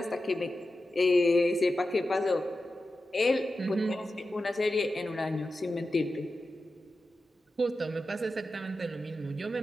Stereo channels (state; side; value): normal; both; correlation 0.92